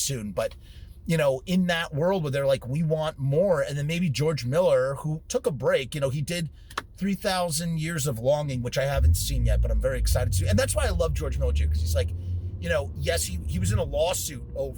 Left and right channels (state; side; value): identical; both; correlation 1.00